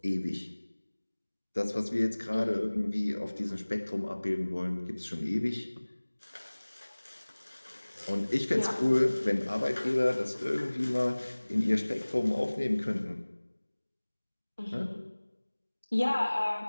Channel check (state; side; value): inverted; both; correlation -1.00